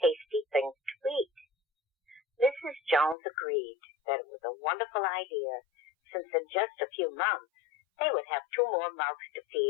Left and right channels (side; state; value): right; drops out; at 3.2 s